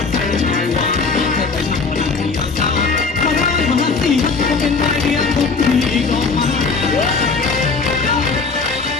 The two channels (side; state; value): right; quieter; 4.5 dB